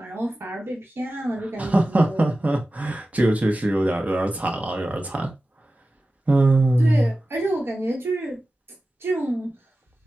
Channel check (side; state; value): both; normal; correlation 0.95